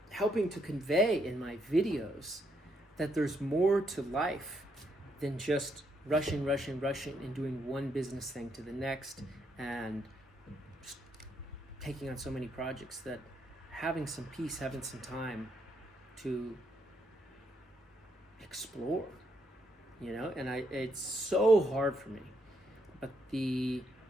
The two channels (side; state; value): both; normal; correlation 0.76